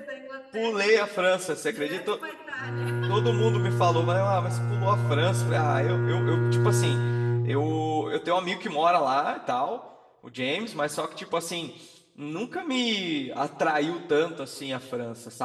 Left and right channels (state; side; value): identical; both; correlation 1.00